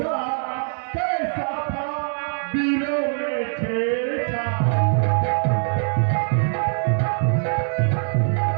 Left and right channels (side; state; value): left; silent; 61 dB below the other